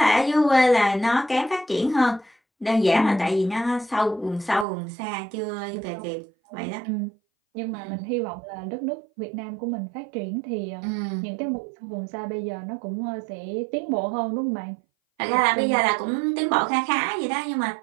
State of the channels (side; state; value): left; drops out; at 4.7 s